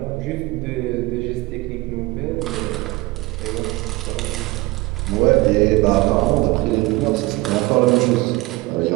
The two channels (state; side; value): quieter; left; 21.1 dB